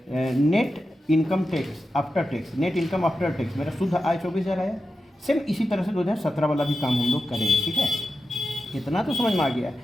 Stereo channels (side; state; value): both; normal; correlation 0.91